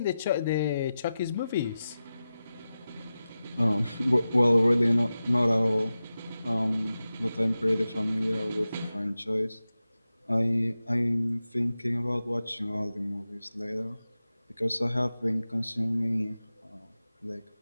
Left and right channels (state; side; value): inverted; both; correlation -0.93